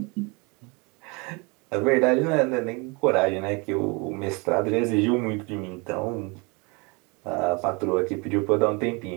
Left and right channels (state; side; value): quieter; left; 29.4 dB